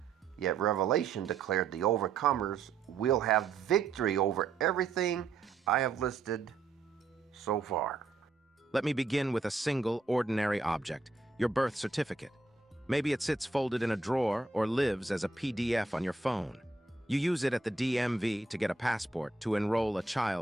Yet Revelation declared the overcomers will have victory over everything I have listed so far. Let me begin with a single, ordinary object, your birth certificate. Maybe it sits folded in a drawer or lives as a PDF on your phone. You use it at the DMV to get a passport to enroll a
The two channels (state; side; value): quieter; left; 3.9 dB